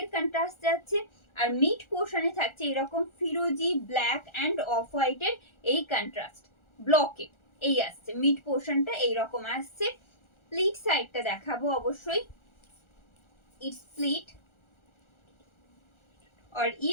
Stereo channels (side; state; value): right; late; 1.4 ms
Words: contrast যাচ্ছে আর mid পোর্শনে থাকছে এরকম ফিরোজি black end of হোয়াইটের এই কন্ট্রাস্ট ব্লকে এই আসছে। মিড পোর্শনটা এইরকম আসছে। প্লিট সাইডটা দেখাবো অবশ্যই। इट्स प्लीट और